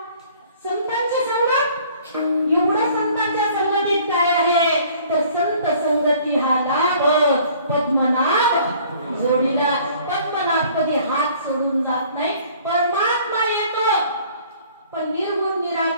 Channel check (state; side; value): inverted; both; correlation -0.54